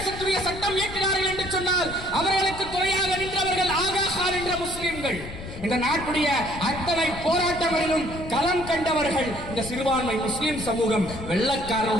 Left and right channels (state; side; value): noise; left; rumble, 11 dB below the sound